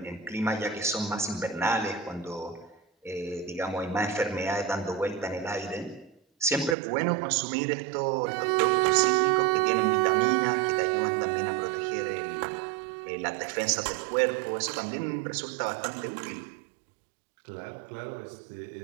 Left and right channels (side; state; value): left; drops out; at 6.8 s